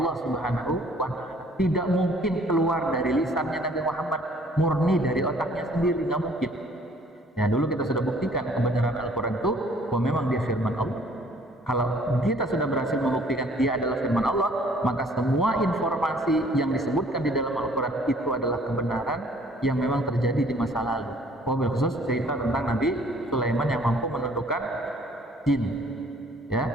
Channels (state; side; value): normal; both; correlation 0.58